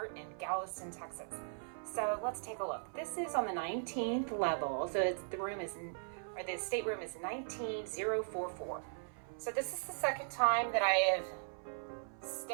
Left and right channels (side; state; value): left; silent; 52 dB below the other